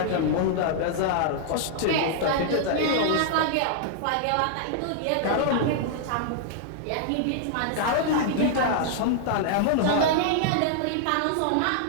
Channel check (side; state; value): both; different; correlation -0.01